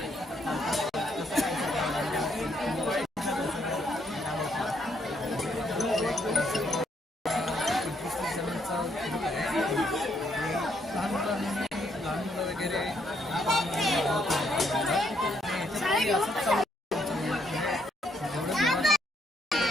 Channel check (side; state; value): both; normal; correlation 0.73